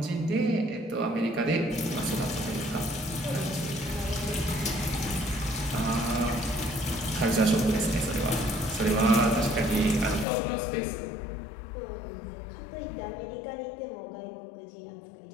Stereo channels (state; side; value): drops out; right; at 10.2 s